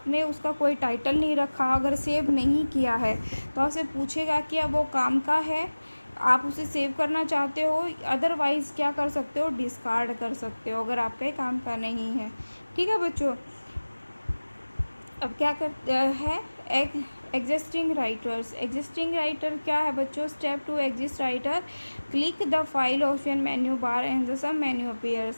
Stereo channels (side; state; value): both; inverted; correlation -1.00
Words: उसका कोई टाइटल नहीं रखा, अगर सेव नहीं किया है, तो आपसे पूछेगा कि अब वो काम का है, आप उसे सेव करना चाहते हो, अदरवाइज़ क्या कर सकते हो? डिस्कार्ड कर सकते हो, अगर आपके काम का नहीं है। ठीक है बच्चों, अब क्या करते हैं? एग्जिस्टिंग राइटर क्या है बच्चों? Step to exist writer, click the file option menu bar and the sub menu